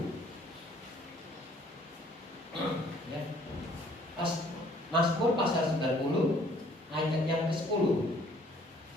Ya. Mazmur pasal 90 ayat yang ke-10.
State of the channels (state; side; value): normal; both; correlation 0.59